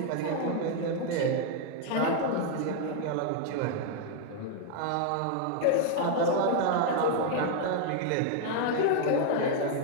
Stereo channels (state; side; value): different; both; correlation 0.00